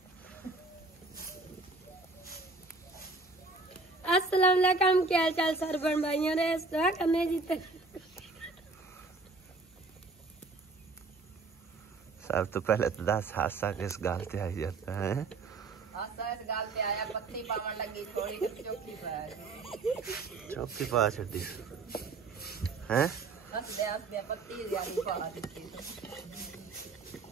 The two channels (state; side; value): quieter; left; 3.7 dB